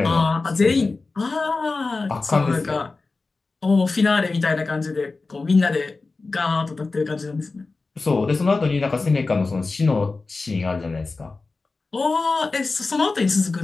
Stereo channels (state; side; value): quieter; right; 3.8 dB